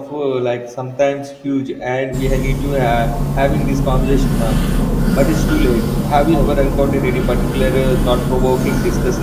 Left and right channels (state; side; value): identical; both; correlation 1.00